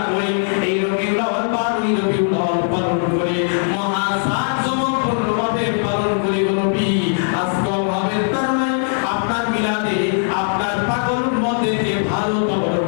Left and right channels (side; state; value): right; silent; 57 dB below the other